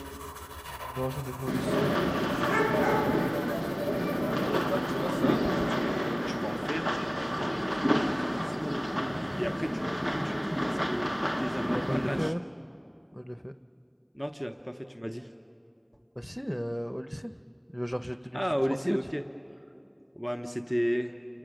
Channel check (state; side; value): identical; both; correlation 1.00